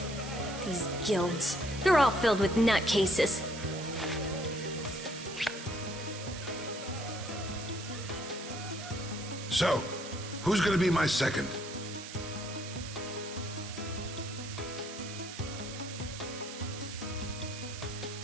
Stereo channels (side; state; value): right; noise; hiss, 11 dB below the sound